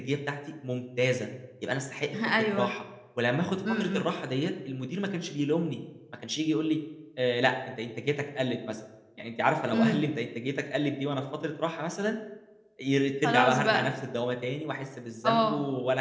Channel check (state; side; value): identical; both; correlation 1.00